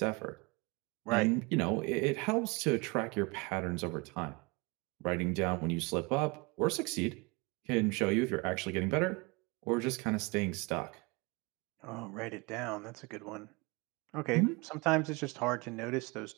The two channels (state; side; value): quieter; left; 27.3 dB